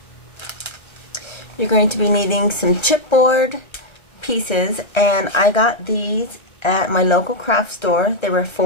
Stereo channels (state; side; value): late; right; 1.3 ms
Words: you're going to be needing some chipboard pieces, and I got these at my local craft store. They were